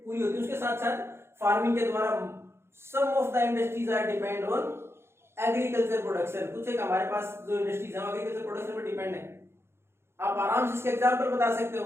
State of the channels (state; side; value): late; left; 0.12 ms